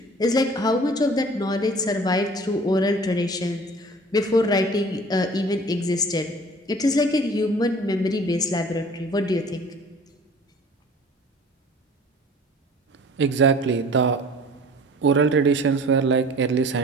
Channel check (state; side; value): normal; both; correlation 0.47